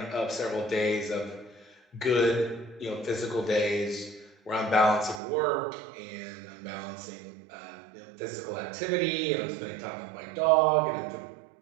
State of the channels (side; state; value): left; drops out; at 5.2 s